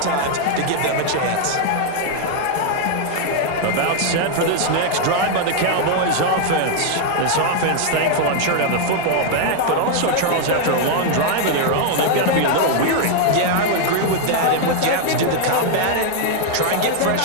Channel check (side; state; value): both; different; correlation 0.00